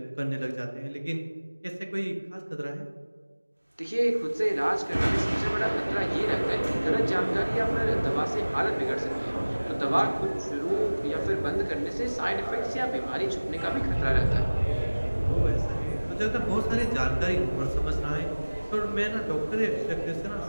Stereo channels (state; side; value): inverted; both; correlation -1.00